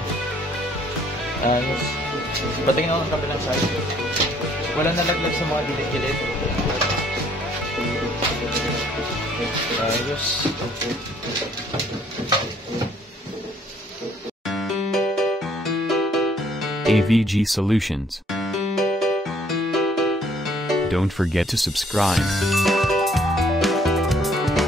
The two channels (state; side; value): normal; both; correlation 0.63